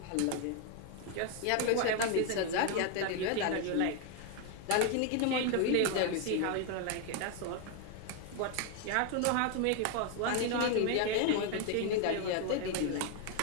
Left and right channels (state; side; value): different; both; correlation 0.01